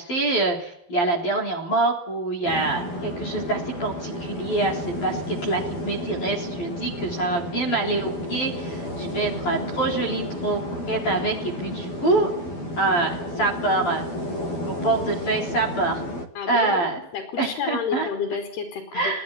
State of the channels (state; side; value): late; right; 12 ms